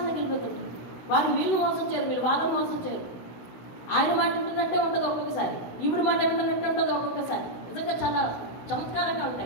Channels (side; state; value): right; late; 16 ms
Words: వాళ్ళు వీళ్ళు మోసం చేయరు, వీళ్ళు వాళ్ళని మోసం చేయరు. ఆయన మాట వింటున్నట్టే ఉంటుంది ఒక్కొక్కసారి, ఈవిడ మాట వింటున్నట్టే ఉంటుంది ఒక్కొక్కసారి. నిజంగా చాలా చమత్కారంగా